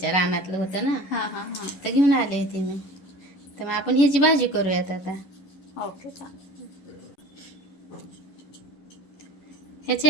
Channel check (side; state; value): right; late; 10 ms